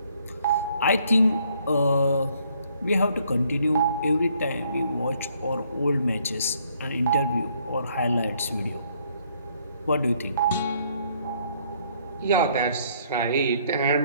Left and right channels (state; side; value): inverted; both; correlation -0.67